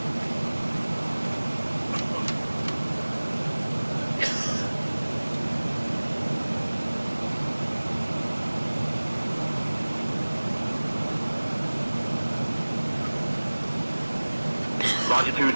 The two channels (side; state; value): both; inverted; correlation -1.00